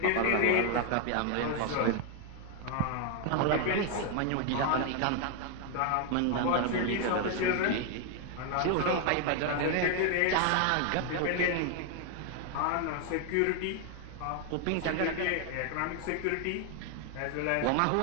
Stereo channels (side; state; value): both; different; correlation 0.00